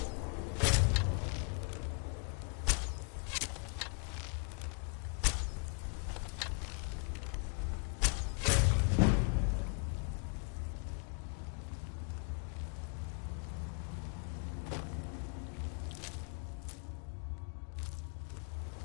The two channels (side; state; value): right; quieter; 39.1 dB